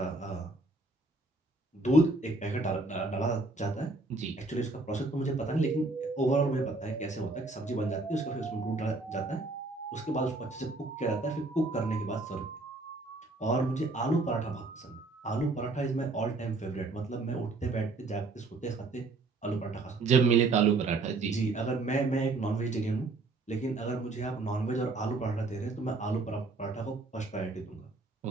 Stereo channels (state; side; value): quieter; left; 3.3 dB